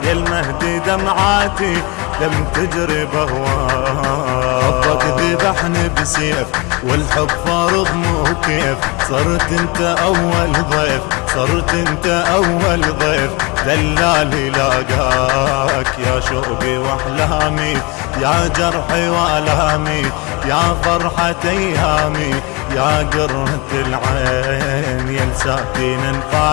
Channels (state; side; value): quieter; right; 27.1 dB